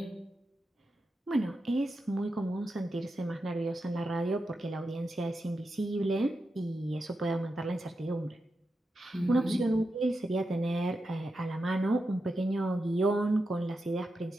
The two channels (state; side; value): normal; both; correlation 0.88